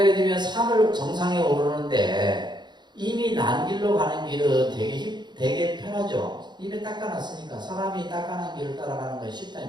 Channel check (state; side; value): late; left; 0.21 ms